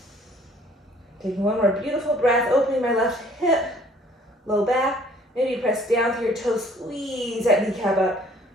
Taking one more beautiful breath, opening my left hip, low back. Maybe press down through your toes, squeeze that kneecap up.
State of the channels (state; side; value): normal; both; correlation 0.57